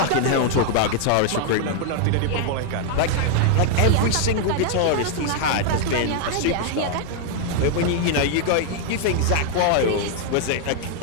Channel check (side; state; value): both; different; correlation 0.00